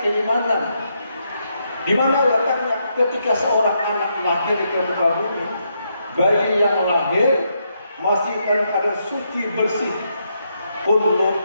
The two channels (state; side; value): inverted; both; correlation -0.79